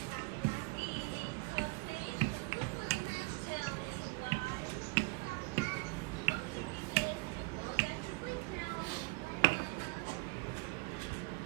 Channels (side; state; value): left; quieter; 26.0 dB